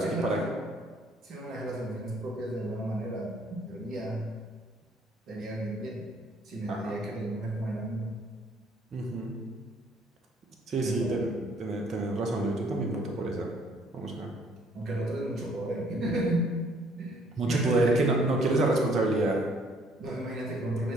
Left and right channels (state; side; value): normal; both; correlation 0.62